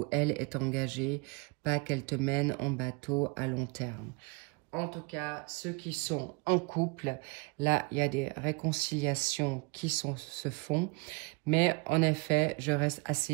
elle, est engagé, pas qu'elle te mène en bateau à long terme. En tout cas, ceux qui sont en couple, là, il y a des réconciliations qui se font. Mais en effet, je reste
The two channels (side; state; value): left; quieter; 28.1 dB